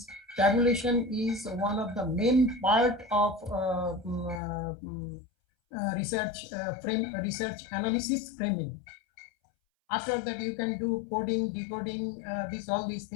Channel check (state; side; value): drops out; right; at 4.4 s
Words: tabulation is one of the main part of research research analysis framing. After that, you can do coding, decoding, all these